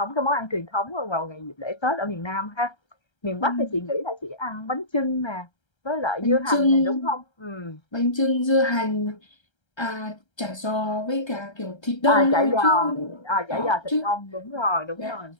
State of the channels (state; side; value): late; right; 1.3 ms